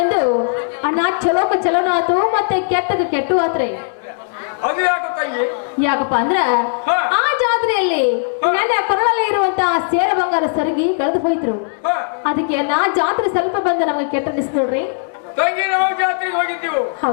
ಅಣ್ಣ ಚಲೋಕ ಚಲೋನ ಆತು ಮತ್ತೆ ಕೆಟ್ಟದ ಕೆಟ್ಟು ಆತ್ರಿ. ಅದು ಯಾಕೆ ತಂಗಿ? ಯಾಕಪ್ಪ ಅಂದ್ರ ಹಾ. ಆ ಜಾತ್ರೆಯಲ್ಲಿ ನನ್ನ ಕೊರಳಲ್ಲಿ ಇರುವಂತಹ ಸೇರ ಬಂಗಾರ ಸರಗಿ ಕಳೆದು ಹೋಯ್ತ್ರು. ಹಾ. ಅದಕ್ಕೆ ನಾ ಜಾತ್ರೆ ಸ್ವಲ್ಪ ಬಂದ ನಮಗೆ ಕೆಟ್ಟ ಅನಿಸ್ತು ನೋಡ್ರಿ. ತಂಗಿ ನಾವು ಜಾತ್ರೆಗೆ ಹೋಗಿದ್ದೀವಿ.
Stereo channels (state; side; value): silent; right; 67 dB below the other